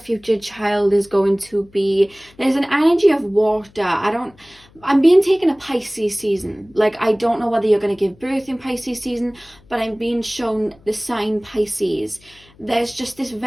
child is going to be, there's an energy of water. I'm being taken a Pisces season. Like, I don't know whether you're going to give birth in Pisces season, but I'm being shown the sign Pisces. There's just this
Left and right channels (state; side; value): noise; left; hum, 28 dB below the sound